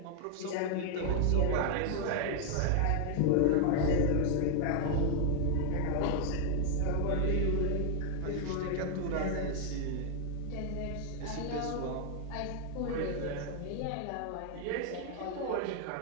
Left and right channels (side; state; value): both; different; correlation 0.00